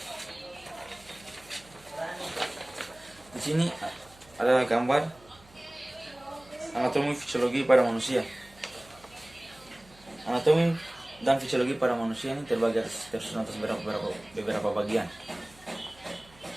Di sini ada gambar anatomi fisiologi pada manusia. Anatomi dan fisiologi pada manusia ini terbagi tersusun atas beberapa bagian,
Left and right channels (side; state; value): right; noise; hum, 25 dB below the sound